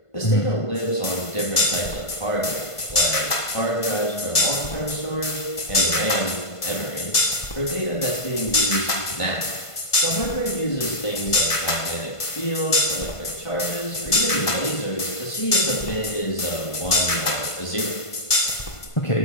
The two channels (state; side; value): late; right; 1.5 ms